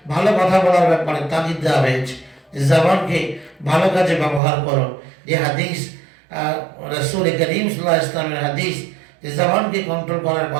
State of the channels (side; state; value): left; drops out; at 4.4 s